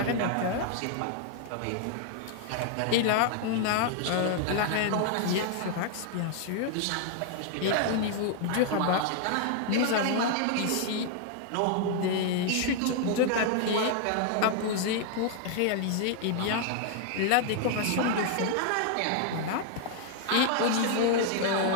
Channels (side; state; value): both; different; correlation 0.00